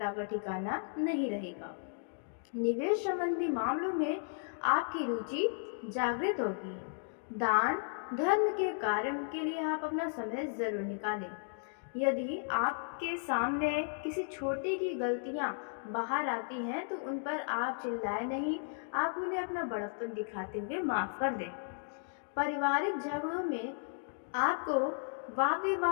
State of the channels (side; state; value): right; silent; digital silence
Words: का ठिकाना नहीं रहेगा। निवेश संबंधी मामलों में आपकी रुचि जागृत होगी। दान धर्म के कार्य के लिए आप अपना समय जरूर निकालें। यदि आपके सामने किसी छोटी की गलतियां बाहर आती हैं तो उन पर आप चिल्लाए नहीं, आप उन्हें अपना बड़प्पन दिखाते हुए माफ़ कर दें। पारिवारिक झगड़ों में आपको वाद